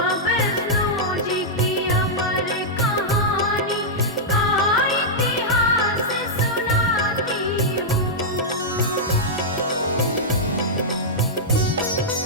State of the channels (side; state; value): both; normal; correlation -0.09